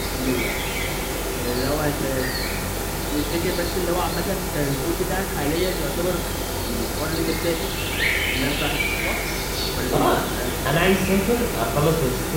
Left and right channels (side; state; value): both; identical; correlation 1.00